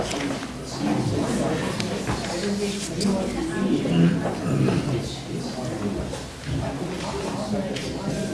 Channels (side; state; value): both; identical; correlation 1.00